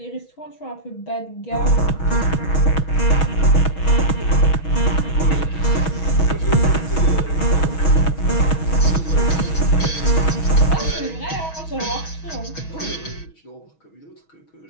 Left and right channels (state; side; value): late; right; 6.3 ms